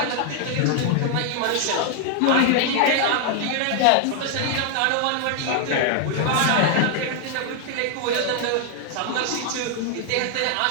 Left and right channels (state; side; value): different; both; correlation 0.00